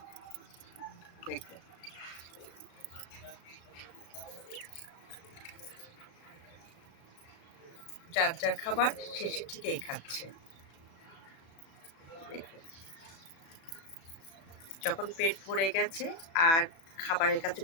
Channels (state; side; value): late; right; 36 ms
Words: দেখুন, যার যার খাবার শেষে ঠিকই খাচ্ছে। দেখুন, যখন পেট ভরে গেছে আর খাবারের কাছে